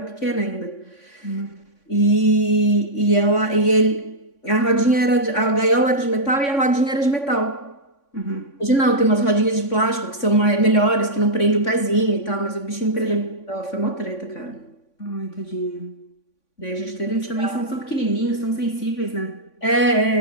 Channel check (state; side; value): late; right; 3.6 ms